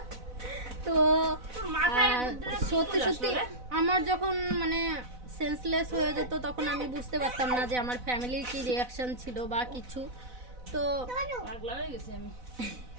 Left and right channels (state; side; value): late; left; 4.0 ms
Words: তো তোর মাথায় আর বুদ্ধিটা কি সত্যি করে সত্যি আসলো রে? আমার যখন মানে সেন্সলেস হয়ে যেত তখন আমি বুঝতে পারতাম না যে আমার ফ্যামিলির কি রিয়াকশন ছিল বা কিছু। তো পাগলা হয়ে গেছি আমি।